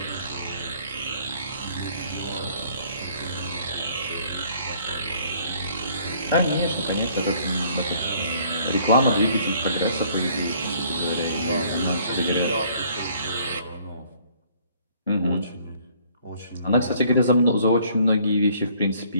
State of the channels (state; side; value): inverted; both; correlation -0.60